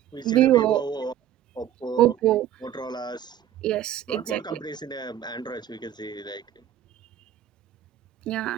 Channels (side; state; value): left; quieter; 10.9 dB